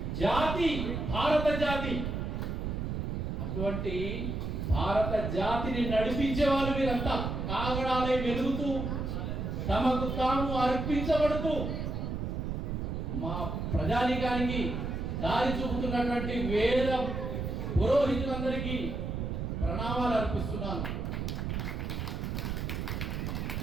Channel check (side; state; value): right; noise; rumble, 3 dB below the sound